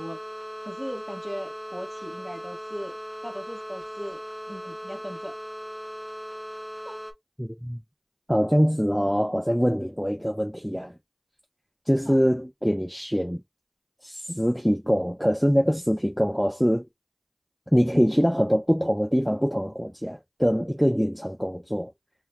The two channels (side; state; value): both; identical; correlation 1.00